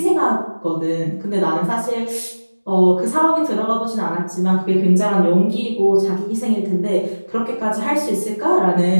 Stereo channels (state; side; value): inverted; both; correlation -1.00